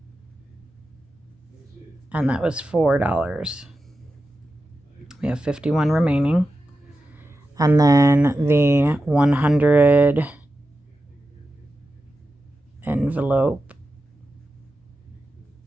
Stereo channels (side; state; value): both; normal; correlation 0.91